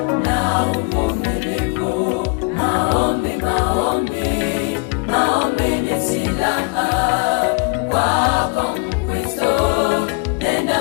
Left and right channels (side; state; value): right; quieter; 33.2 dB